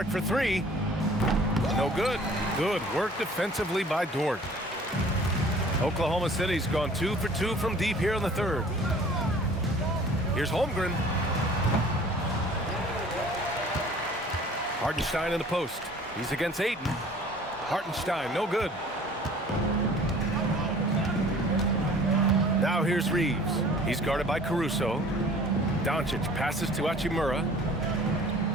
for 3. No good. Good work defensively by Dort. Oklahoma City's gone 2 for 2 from deep here in the third. Here's Holmgren. Hartenstein in the post. He's against Ayton. Hartenstein, no good. Now here's Reaves. He's guarded by Caruso. Doncic passes to Hachimura.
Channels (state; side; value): normal; both; correlation 0.50